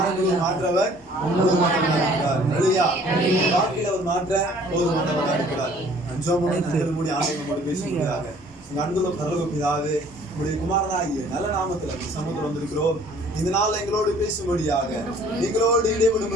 மாற்றவர் போதுமானவராக இருக்கிறார். அல்லேலூயா. வாழ்க்கையில அவர் மாற்ற போதுமானவராக இருக்கிறார். மூடி ஆண்டவரோடு பேசுகிறாங்க. உங்க அன்புள்ள பரலோக பிதாவே, உங்களுடைய குமாரனாகிய நல்ல நாமத்துல சமூகத்தில் வந்திருக்கிறோம். இந்த நாள் எங்களோடு பேசும்படியாக, எங்களோடு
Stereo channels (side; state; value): both; normal; correlation 0.55